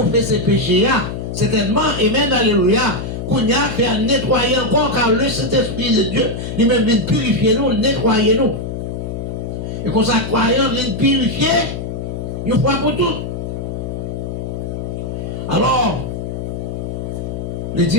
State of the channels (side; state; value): left; noise; hum, 5 dB below the sound